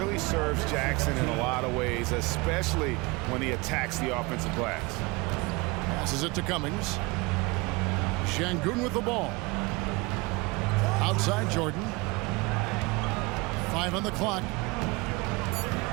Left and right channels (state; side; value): quieter; left; 25.5 dB